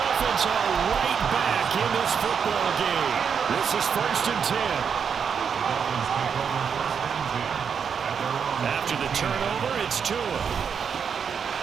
are right back in this football game. This is 1st and 10. After the turnover, it's Tua.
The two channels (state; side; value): quieter; left; 6.8 dB